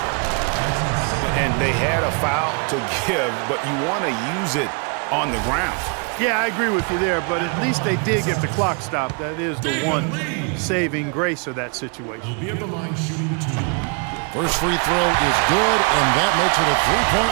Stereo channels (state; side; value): quieter; left; 36.9 dB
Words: And they had a foul to give, but you want to use it on the ground. Yeah, I agree with you there, but at least they did get the clock stopped. That is the one saving grace of that situation. First free throw is good, and that makes it a